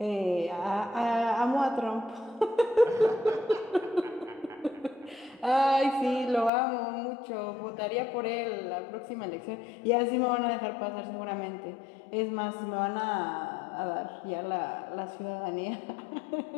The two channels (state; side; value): drops out; right; at 6.5 s